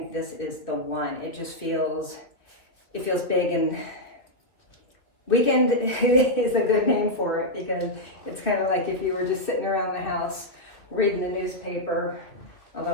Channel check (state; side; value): late; right; 2.4 ms